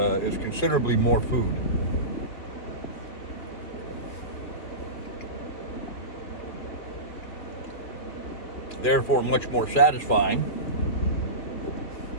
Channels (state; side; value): late; right; 2.6 ms